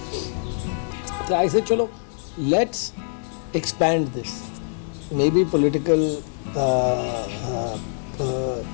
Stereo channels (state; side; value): silent; right; digital silence